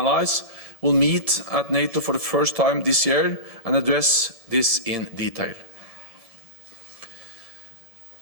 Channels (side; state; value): right; late; 1.7 ms